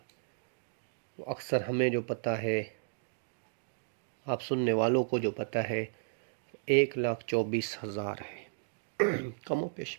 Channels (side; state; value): left; silent; digital silence